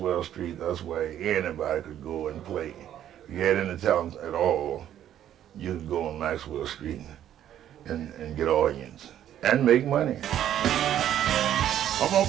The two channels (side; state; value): left; quieter; 11.0 dB